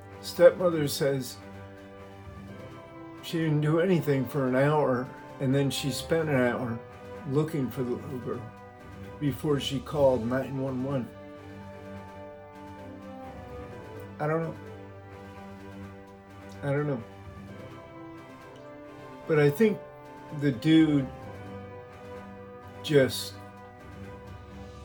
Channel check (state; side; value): identical; both; correlation 1.00